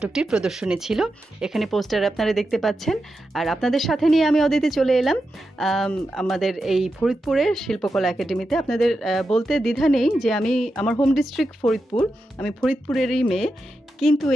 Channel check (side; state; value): both; normal; correlation 0.89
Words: প্রদর্শনী ছিল। এখানে পোস্টার আপনারা দেখতে পাচ্ছেন। আর আপনাদের সাথে নিয়ে আমি অদিতি চলে এলাম আমাদের এই ফরিদপুরের শিল্পকলা একাডেমিতে। আপনাদের বলতে দ্বিধা নেই যে আমার হোম ডিস্ট্রিক্ট ফরিদপুর, আমি ফরিদপুরেরই মেয়ে, কিন্তু